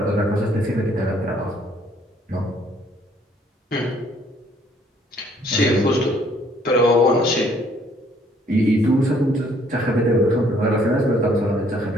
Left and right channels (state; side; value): normal; both; correlation 0.63